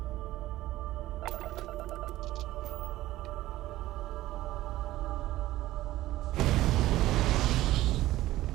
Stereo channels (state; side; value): quieter; left; 15.8 dB